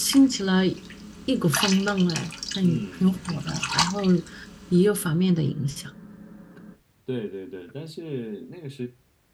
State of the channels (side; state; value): both; identical; correlation 1.00